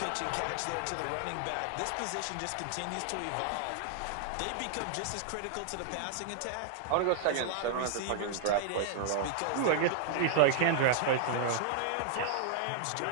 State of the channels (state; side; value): different; both; correlation -0.01